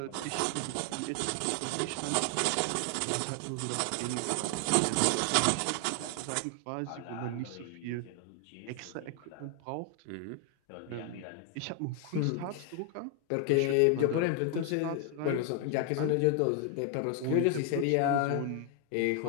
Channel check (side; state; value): both; different; correlation 0.00